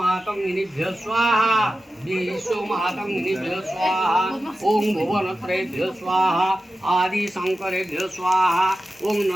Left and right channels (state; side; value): normal; both; correlation 0.93